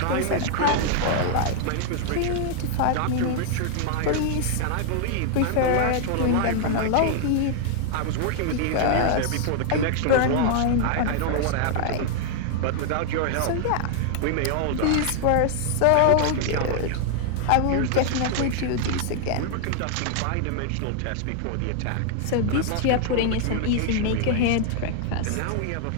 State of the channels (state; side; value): different; both; correlation 0.00